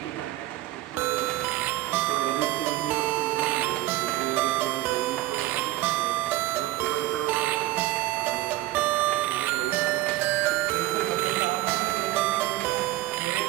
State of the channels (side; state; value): left; quieter; 16.1 dB